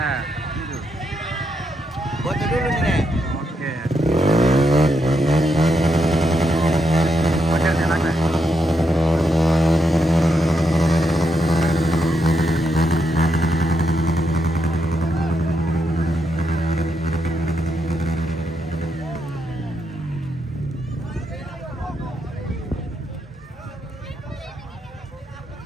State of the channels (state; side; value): normal; both; correlation 0.81